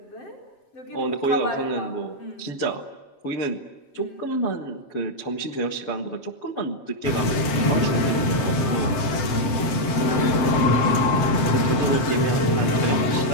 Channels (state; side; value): late; right; 7.7 ms